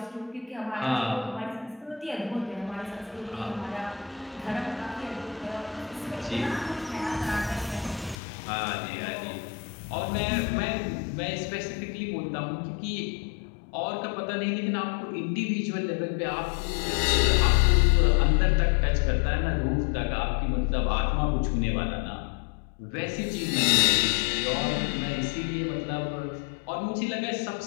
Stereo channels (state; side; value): drops out; right; at 8.2 s